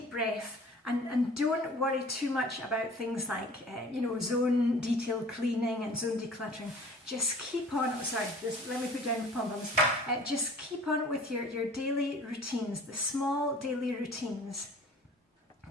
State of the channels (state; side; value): normal; both; correlation 0.47